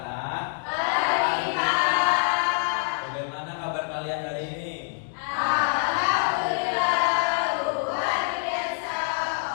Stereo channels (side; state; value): right; silent; 61 dB below the other